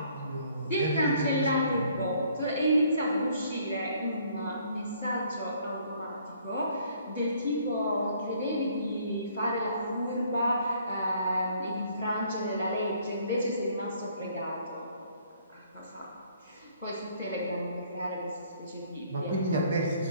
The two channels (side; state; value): both; inverted; correlation -0.62